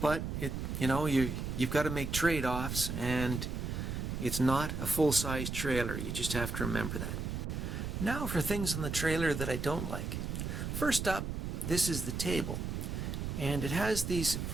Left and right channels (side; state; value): right; noise; rumble, 3 dB below the sound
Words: But you've got to make trade-offs, and it's not a full-size trailer. You just have to remember that. Now for things on the trailer that I don't like. First up, this is the table. And it has these